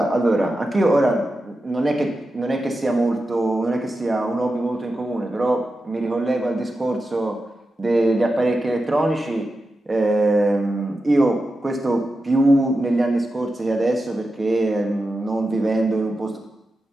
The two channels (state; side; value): normal; both; correlation 0.90